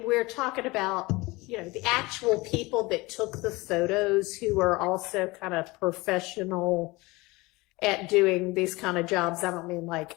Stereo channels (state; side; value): quieter; right; 22.6 dB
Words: we're talking about, you know, the actual people that took the photos, who are also kind of professional at doing these kind of jobs? I don't mean like